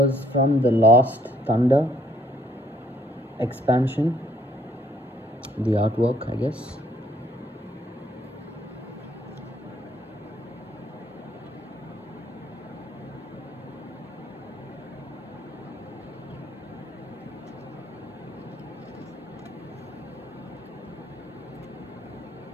from the Lost Thunder expansion, the artwork, I guess.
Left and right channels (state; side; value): normal; both; correlation 0.65